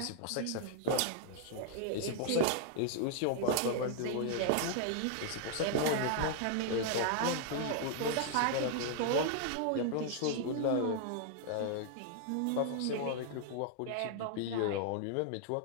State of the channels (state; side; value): different; both; correlation 0.00